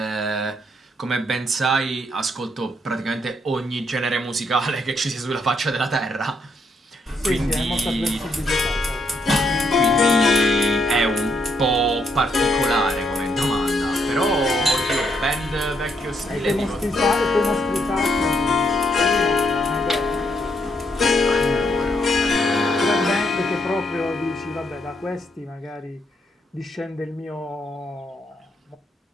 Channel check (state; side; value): normal; both; correlation 0.75